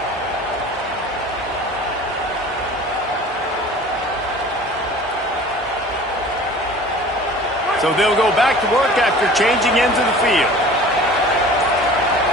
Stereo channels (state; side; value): normal; both; correlation 0.43